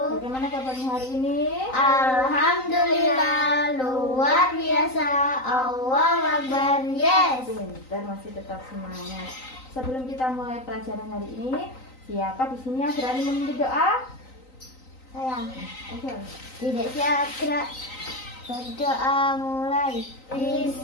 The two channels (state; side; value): late; right; 3.9 ms